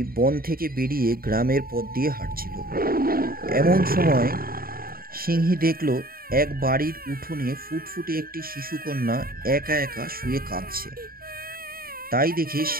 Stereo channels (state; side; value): late; left; 0.43 ms